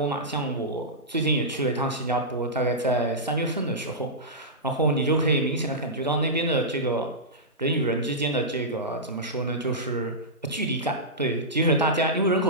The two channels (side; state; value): both; normal; correlation -0.13